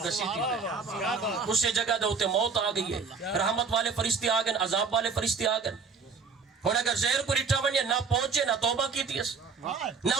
گسیتی ہے اسے جگہ دے ہوتے موت آ گئی ہے رحمت والے فرشتے آ گئے عذاب والے فرشتے آ گئے. اور اگر زہر کو رٹھا ونیا نہ پہنچے نہ توبہ کی تیس نہ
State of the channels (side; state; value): left; quieter; 5.2 dB